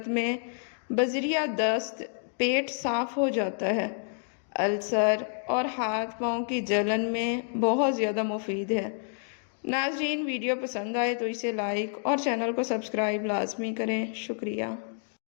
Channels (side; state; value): right; silent; digital silence